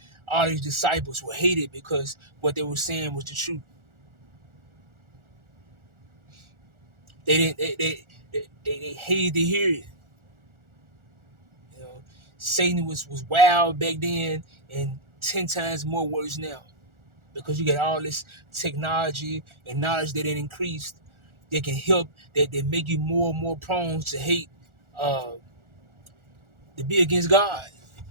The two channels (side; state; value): left; late; 1.4 ms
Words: all these disciples were hated because what they were saying was the truth. They didn't. They hated to hear it. You know, Satan was wild back then, and 10 times more worse now because you got all this technology and knowledge that it increased. That can help. That make you more and more prone to hate, uh, to be against God.